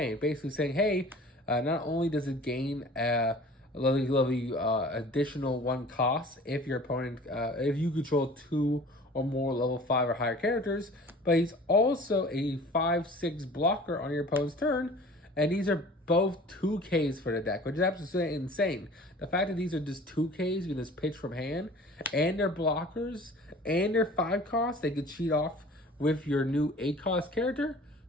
Basically saying, hey, not only does it gain a lovely additional 1 cost if your opponent, if you control 2 or more level 5 or higher characters, but he's also a 5/6 blocker on your opponent's turn, and these are both 2Ks for the deck, which is absolutely insane. The fact that these are just 2Ks, you can just pitch from hand, and they're blockers, and they're 5 costs, they could cheat off with your new 8-cost character,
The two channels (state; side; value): normal; both; correlation 0.45